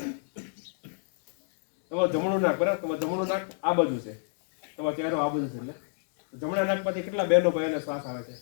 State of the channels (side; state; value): right; silent; 59 dB below the other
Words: તમારું જમણું નાક. બરાબર. તમારું જમણું નાક આ બાજુ છે, તમારો ચહેરો આ બાજુ છે. એટલે જમણા નાક પરથી કેટલા બહેનો ભાઈઓને શ્વાસ આવે છે?